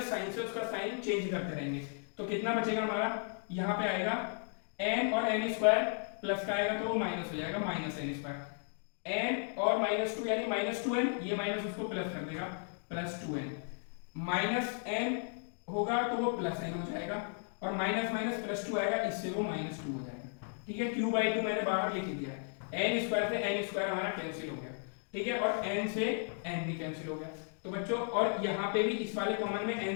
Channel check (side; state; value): right; silent; 54 dB below the other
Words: साइन से उसका साइन चेंज करते रहेंगे। तो कितना बचेगा हमारा, यहाँ पे आएगा n और n स्क्वायर प्लस का आएगा तो वो माइनस हो जाएगा माइनस n स्क्वायर, n और माइनस टू यानी माइनस 2n, ये माइनस उसको प्लस कर देगा प्लस 2n, माइनस n होगा तो वो प्लस n हो जाएगा और माइनस माइनस प्लस 2 आएगा, इससे वो माइनस 2 हो जाएगा। ठीक है, q बाई 2 मैंने बाहर लिख दिया है, n स्क्वायर से n स्क्वायर हमारा कैंसिल हो गया। ठीक है, और n से n भी कैंसिल हो गया। तो बच्चों और यहाँ पे भी इस वाले कॉमन में